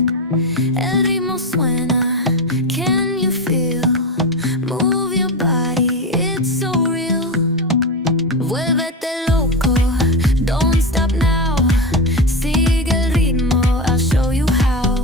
El ritmo suena, can you feel? Move your body, it's so real. Vuélvete loco, don't stop now. Sigue el ritmo, I'll show you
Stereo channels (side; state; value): both; normal; correlation 0.17